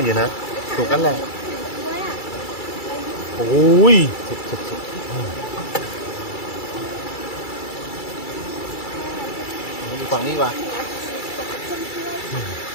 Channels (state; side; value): late; right; 2.3 ms